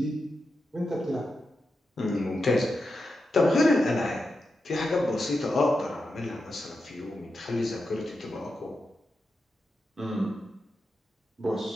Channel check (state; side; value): normal; both; correlation 0.88